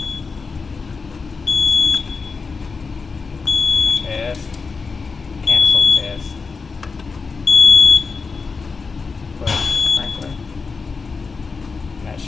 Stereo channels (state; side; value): quieter; right; 4.8 dB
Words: Test. Cancel test. Push sprinkler. That